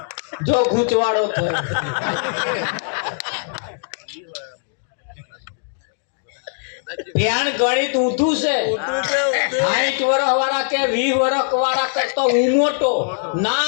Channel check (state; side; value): silent; right; digital silence